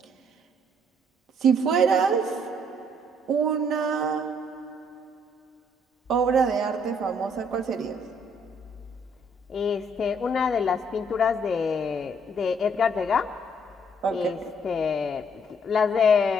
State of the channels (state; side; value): normal; both; correlation 0.65